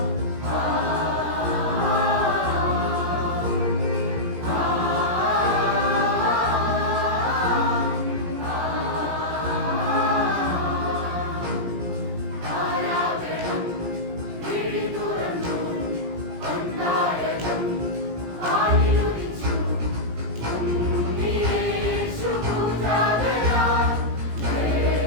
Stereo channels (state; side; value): late; left; 17 ms